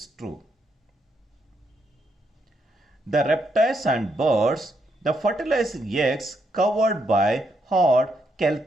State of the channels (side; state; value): both; normal; correlation 0.78